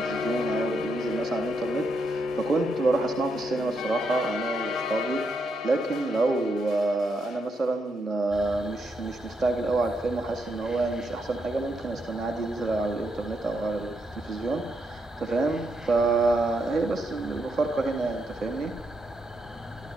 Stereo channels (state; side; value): normal; both; correlation 0.80